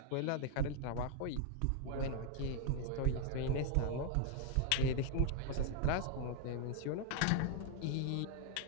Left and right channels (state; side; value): different; both; correlation 0.00